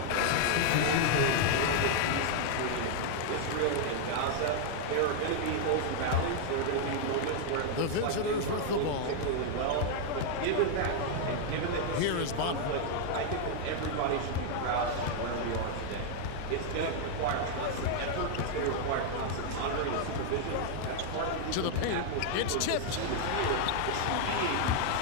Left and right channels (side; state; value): both; different; correlation 0.00